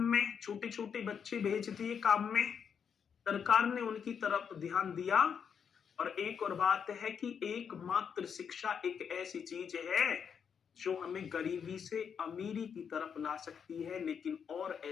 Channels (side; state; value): right; quieter; 7.1 dB